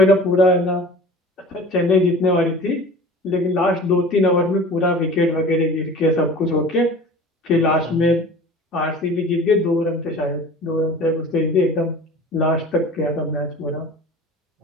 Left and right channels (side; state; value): both; normal; correlation 0.40